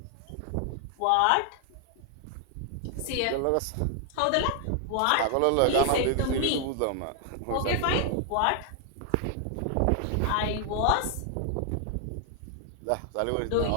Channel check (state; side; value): different; both; correlation 0.00